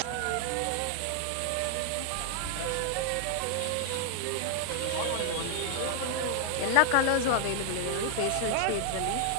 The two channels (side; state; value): both; different; correlation 0.00